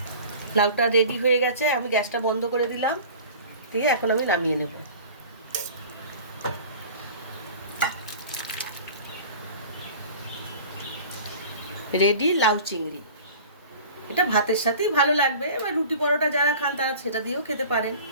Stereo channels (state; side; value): inverted; both; correlation -0.41